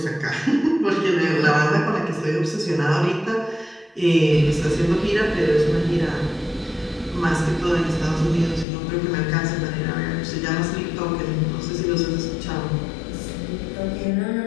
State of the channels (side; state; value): right; drops out; at 8.7 s